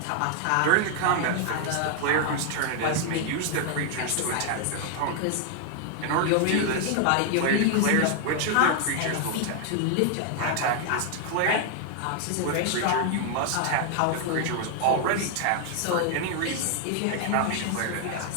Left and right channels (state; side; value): different; both; correlation 0.00